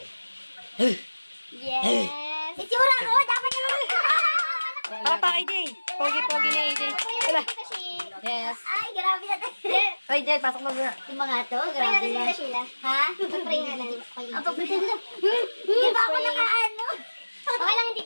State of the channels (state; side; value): inverted; both; correlation -1.00